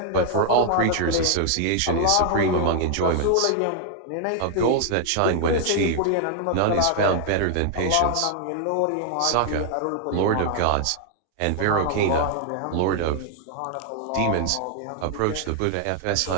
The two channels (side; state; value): both; different; correlation 0.00